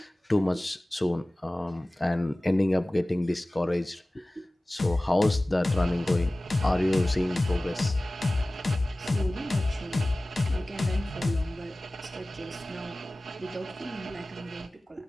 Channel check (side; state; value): both; normal; correlation 0.98